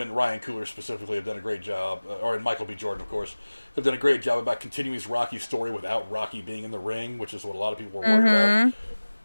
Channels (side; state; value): both; inverted; correlation -1.00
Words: Ryan Coogler specifically have done a great job, and Michael B. Jordan, of course, have done a great job about continuing his Rocky story without Rocky being in the ring, which is what a lot of people were worried about.